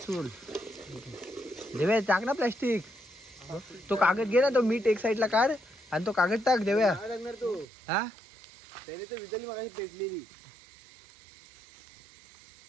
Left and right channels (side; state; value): left; drops out; at 7.7 s